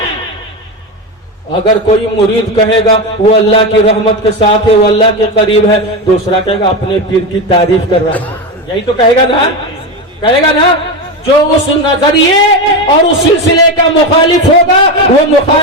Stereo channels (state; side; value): normal; both; correlation 0.16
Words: اگر کوئی مرید کہے گا وہ اللہ کی رحمت کے ساتھ ہے وہ اللہ کے قریب ہے دوسرا کہے گا اپنے پیر کی تعریف کر رہا ہے یہی تو کہے گا نا جو اس نظریے اور اس سلسلے کا مخالف ہوگا وہ